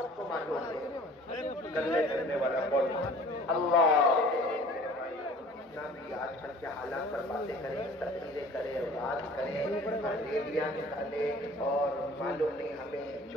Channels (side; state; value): both; normal; correlation 0.48